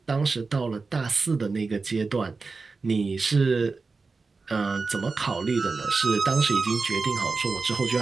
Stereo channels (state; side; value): quieter; left; 4.2 dB